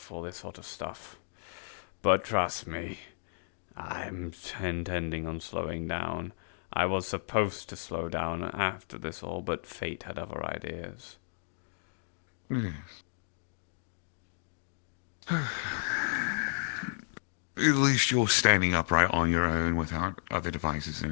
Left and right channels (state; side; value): silent; right; digital silence